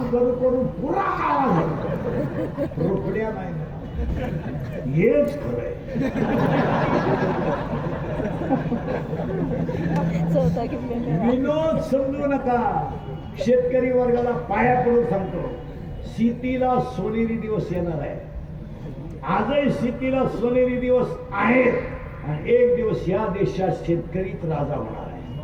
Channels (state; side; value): identical; both; correlation 1.00